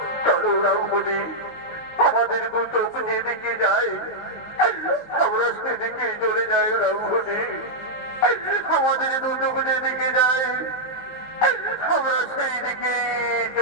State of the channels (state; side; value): late; right; 19 ms